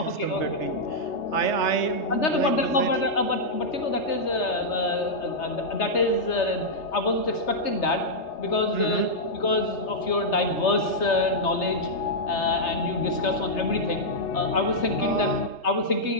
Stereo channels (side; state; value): right; late; 3.3 ms